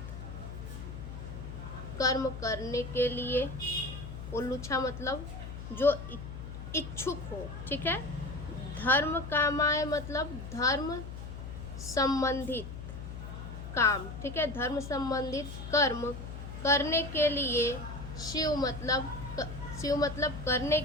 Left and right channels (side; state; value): left; noise; hum, 9 dB below the sound